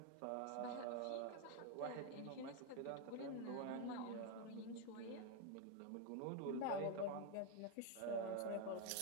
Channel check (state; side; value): different; both; correlation 0.01